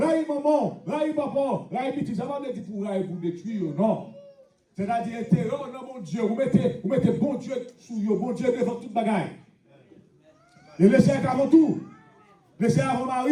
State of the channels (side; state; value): both; identical; correlation 1.00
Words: maman, raï papa, raï petit, ça va me dire pour raï pour détruire, non. C'est-à-dire, intérieur dans mon Dieu, vous mettez bon Dieu sous vous, bon Dieu devant toute bagaille. Et laissez avant tout. Laissez avant